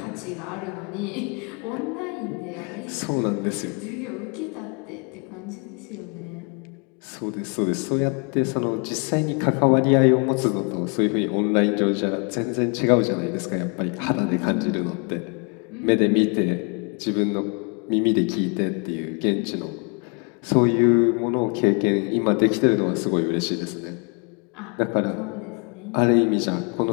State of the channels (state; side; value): quieter; right; 35.4 dB